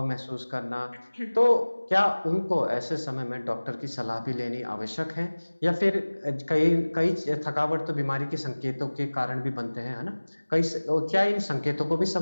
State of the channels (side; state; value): both; inverted; correlation -1.00